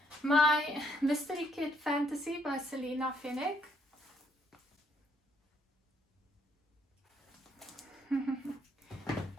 My Mystery Kit Fantasy by Selena Finnick.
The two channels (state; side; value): normal; both; correlation 0.70